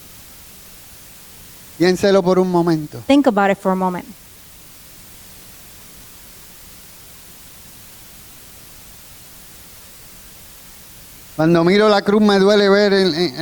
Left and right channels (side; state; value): both; identical; correlation 1.00